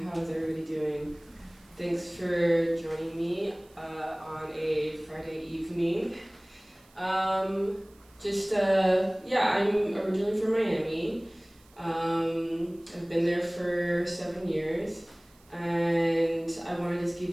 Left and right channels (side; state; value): right; noise; hiss, 30 dB below the sound